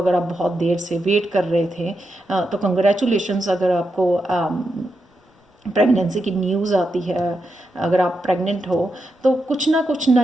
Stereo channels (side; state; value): both; normal; correlation 0.86